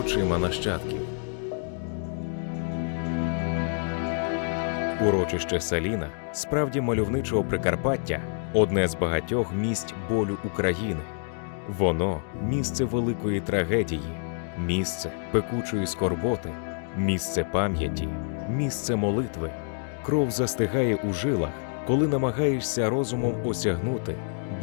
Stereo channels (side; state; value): right; silent; digital silence